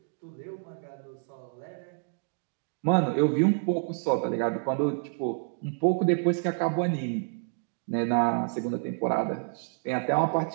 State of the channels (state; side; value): silent; left; digital silence